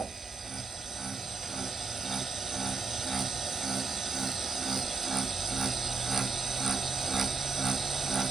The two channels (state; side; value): quieter; left; 4.4 dB